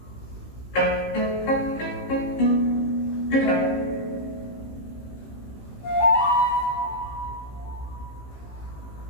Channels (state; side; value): late; right; 15 ms